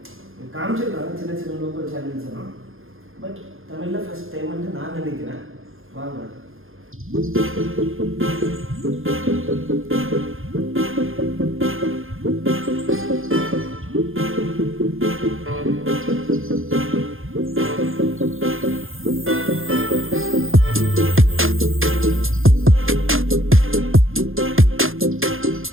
காமிச்சிருக்காங்க சின்ன சின்ன லோக்கல் சேனல்ஸ் எல்லாம். பட் தமிழில் ஃபஸ்ட் டைம்ன்ட்டு நான் நினைக்கிறேன். வாங்க.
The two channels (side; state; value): left; late; 0.60 ms